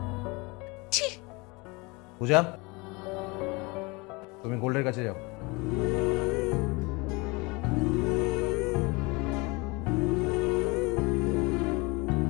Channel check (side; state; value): right; quieter; 26.4 dB